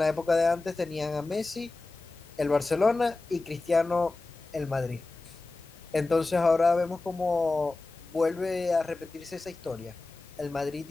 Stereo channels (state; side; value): quieter; right; 3.3 dB